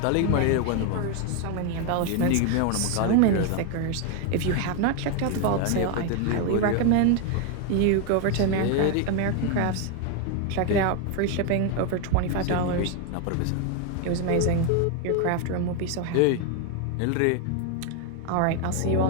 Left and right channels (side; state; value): both; different; correlation 0.01